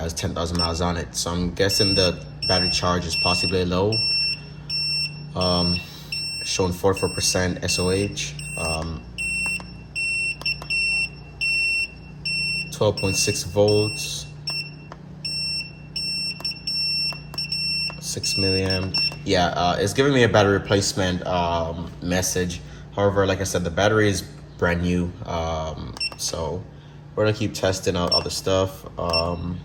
10,000 miles on it. So I'm guessing the battery charge is possibly low. Showing 44% SOH, 12.6 volts, 6 milliamp. Yeah, it's giving me a battery replacement message. However, like I said, the battery is brand new. So we're gonna keep testing out other stuff.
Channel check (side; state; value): both; identical; correlation 1.00